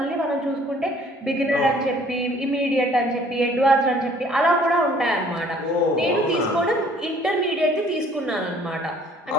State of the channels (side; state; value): both; normal; correlation 0.57